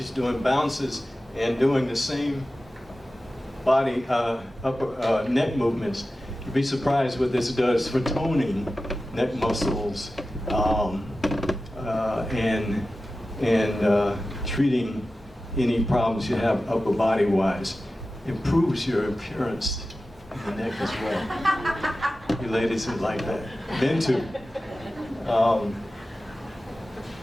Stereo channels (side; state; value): both; normal; correlation 0.94